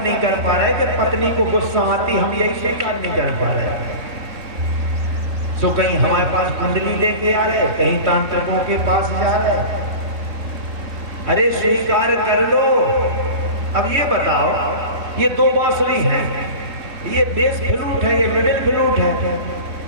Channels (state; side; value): late; left; 3.2 ms